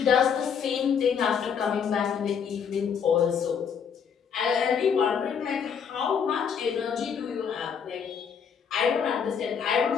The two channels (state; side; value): quieter; right; 7.0 dB